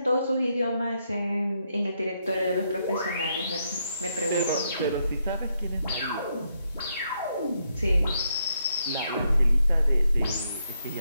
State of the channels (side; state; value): both; inverted; correlation -0.78